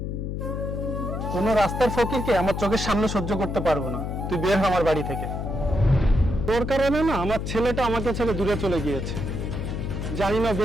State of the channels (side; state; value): left; noise; hum, 4 dB below the sound